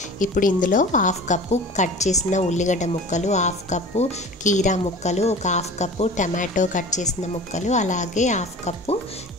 ఇప్పుడు ఇందులో హాఫ్ కప్పు కట్ చేసిన ఉల్లిగడ్డ ముక్కలు, హాఫ్ కప్పు కీరా ముక్కలు, ఒక హాఫ్ కప్పు టమాటో కట్ చేసిన ముక్కలు, అలాగే హాఫ్ కప్పు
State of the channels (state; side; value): normal; both; correlation 0.39